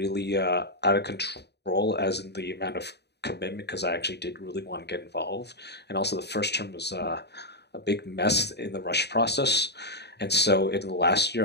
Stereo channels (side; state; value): right; late; 0.49 ms